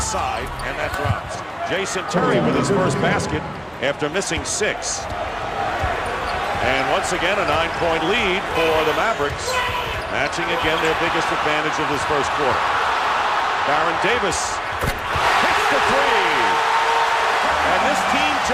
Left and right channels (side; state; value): both; identical; correlation 1.00